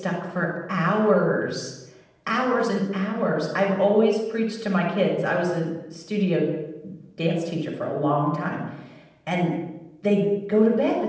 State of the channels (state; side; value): identical; both; correlation 1.00